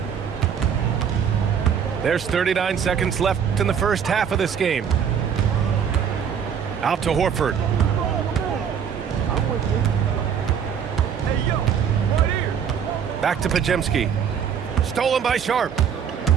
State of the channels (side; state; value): left; quieter; 7.7 dB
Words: There's 39 seconds left in the first half of this game. Out to Horford. Back to Pajemski. Stolen by Sharp.